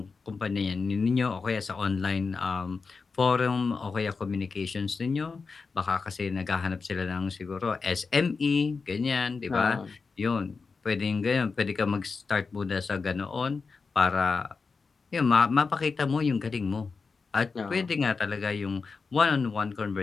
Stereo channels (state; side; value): quieter; right; 4.7 dB